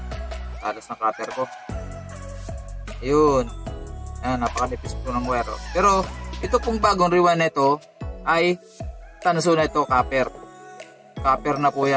Talas ng cutter ko. Ayun. Yan, napakanipis po ng wire. Pero, ito pong bagong rewind na ito ay tanso na ito, copper. Copper na po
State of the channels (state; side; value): identical; both; correlation 1.00